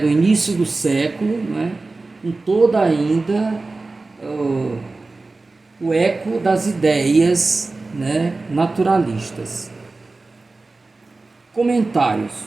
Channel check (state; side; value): quieter; left; 3.5 dB